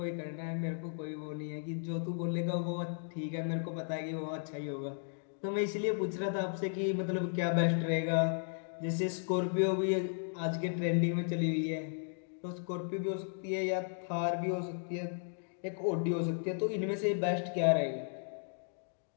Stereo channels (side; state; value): right; silent; digital silence